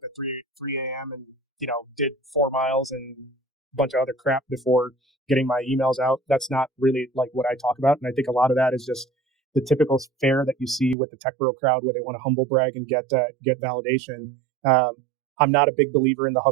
at 3 a.m. and did 4 miles and a bunch of other crap before getting my emails out. That's not really like what I talk about, and I think a lot of that is just the typical fare that you see with the tech bro crowd, where they want to humble brag and get validation. I'm not a big believer in the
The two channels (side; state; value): left; drops out; at 11.0 s